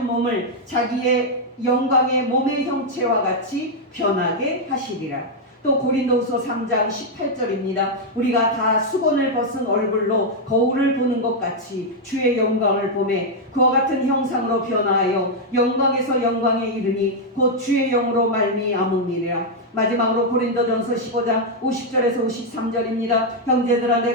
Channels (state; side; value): normal; both; correlation -0.02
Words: 몸을 자기의 영광의 몸의 형체와 같이 변하게 하시리라. 또 고린도후서 3장 18절입니다. 우리가 다 수건을 벗은 얼굴로 거울을 보는 것 같이 주의 영광을 보매 그와 같은 형상으로 변화하여 영광에서 영광에 이르니 곧 주의 영으로 말미암음이니라. 마지막으로 고린도전서 15장 50절에서 53절입니다. 형제들아,